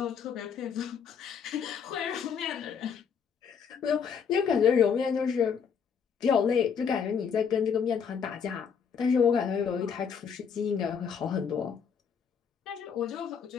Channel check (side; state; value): right; quieter; 6.8 dB